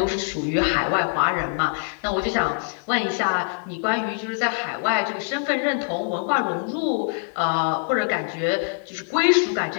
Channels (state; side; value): silent; right; 56 dB below the other